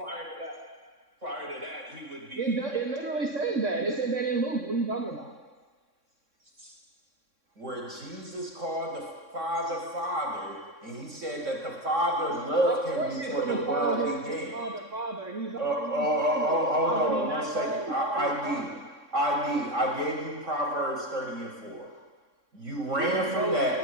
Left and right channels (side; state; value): left; late; 3.6 ms